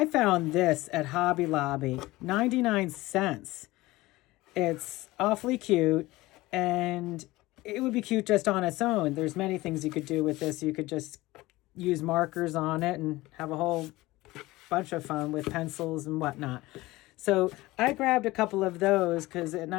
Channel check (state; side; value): quieter; right; 19.3 dB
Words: found this at Hobby Lobby, 99 cents. It's awfully cute, and it would be cute just on its own. There's many things you could do with this. You could just use markers on it and have a whole bunch of fun with pencils and whatnot. So I grabbed a couple of those because at